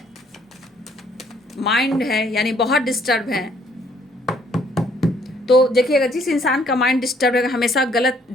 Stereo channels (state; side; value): normal; both; correlation 0.64